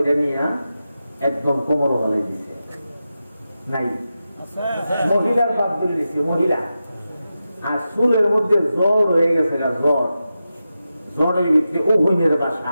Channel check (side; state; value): both; inverted; correlation -0.91